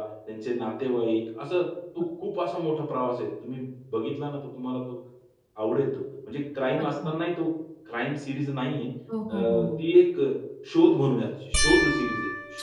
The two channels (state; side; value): identical; both; correlation 1.00